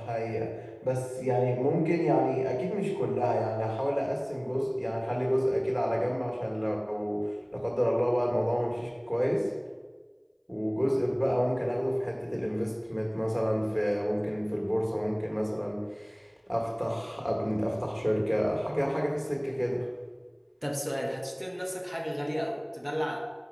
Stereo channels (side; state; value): both; identical; correlation 1.00